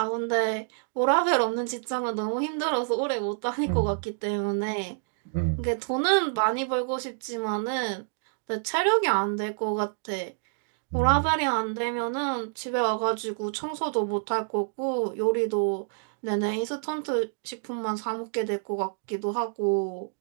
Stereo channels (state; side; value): silent; left; digital silence